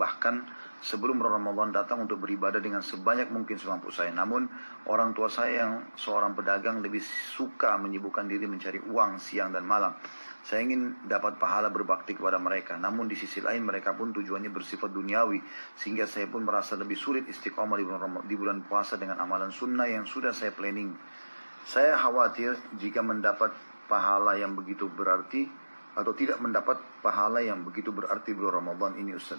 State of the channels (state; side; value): inverted; both; correlation -1.00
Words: sebelum Ramadan datang, untuk beribadah dengan sebanyak mungkin semampu saya. Namun orang tua saya yang seorang pedagang lebih suka menyibukkan diri mencari uang siang dan malam. Saya ingin dapat pahala berbakti kepada mereka. Namun di sisi lain mereka pun tujuannya bersifat duniawi. Sehingga saya pun merasa lebih sulit istiqomah di bulan puasa dengan amalan sunnah yang sudah saya planning. Saya khawatir jika mendapat pahala yang begitu berarti, atau tidak mendapat pahala yang begitu berarti bulan Ramadan ini,